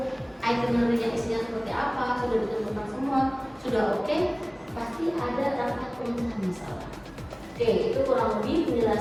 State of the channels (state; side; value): identical; both; correlation 1.00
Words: itinerary-nya isinya seperti apa, sudah ditentukan semua, sudah oke, pasti ada rapat pemecahan masalah. Oke, itu kurang lebih